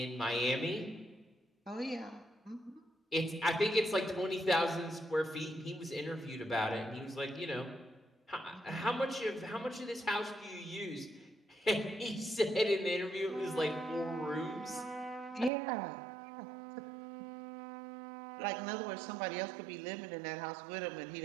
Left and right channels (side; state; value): left; drops out; at 15.5 s